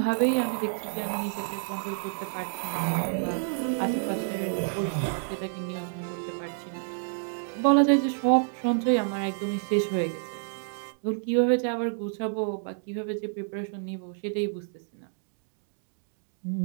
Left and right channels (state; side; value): silent; left; 59 dB below the other